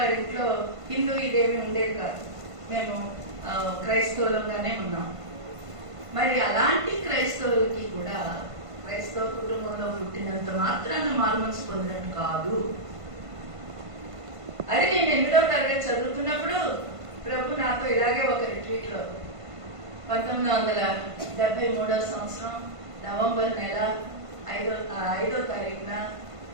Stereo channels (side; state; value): left; late; 1.5 ms